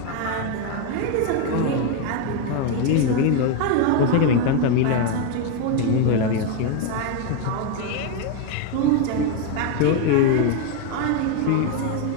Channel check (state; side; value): different; both; correlation 0.02